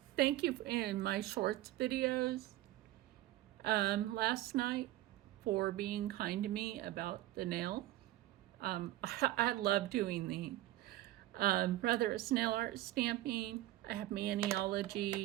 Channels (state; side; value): quieter; left; 15.4 dB